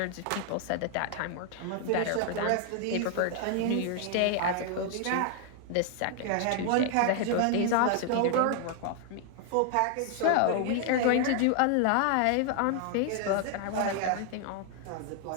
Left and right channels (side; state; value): both; different; correlation 0.00